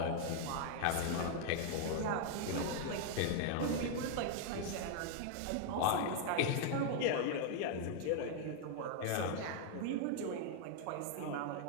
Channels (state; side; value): different; both; correlation 0.00